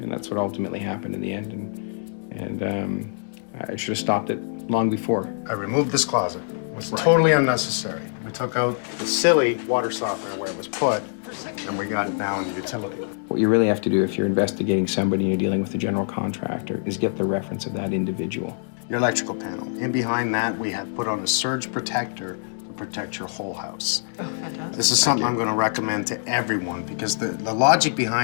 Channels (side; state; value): right; silent; digital silence